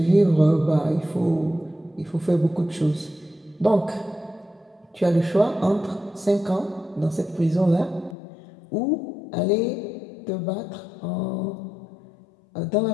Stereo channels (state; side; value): drops out; right; at 8.2 s